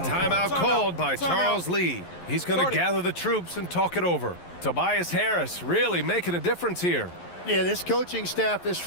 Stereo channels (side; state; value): right; late; 11 ms